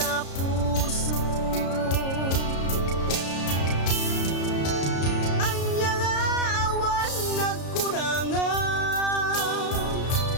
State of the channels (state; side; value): late; right; 33 ms